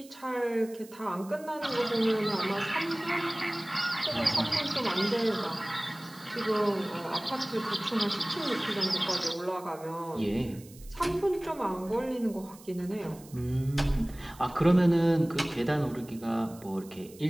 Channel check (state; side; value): noise; right; hiss, 22 dB below the sound